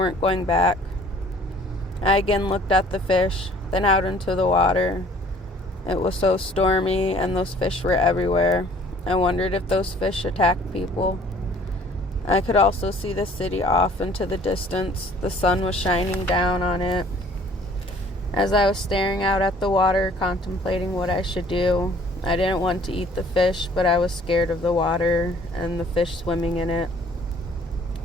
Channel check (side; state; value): both; normal; correlation 0.54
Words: going back. I again looked at the fish, then out into the water. It was so stormy and those fish were everywhere. I wondered if those fish attacked people. I could also see the city off into the distance. The sun was shining down on it. As I was staring out at the water, contemplating what I should do, I didn't want to eat the fish, but I was scared of the water and the fish swimming in it.